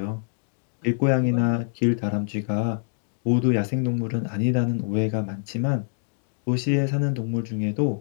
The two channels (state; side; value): silent; right; digital silence